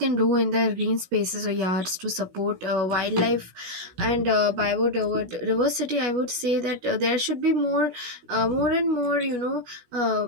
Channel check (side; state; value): left; late; 16 ms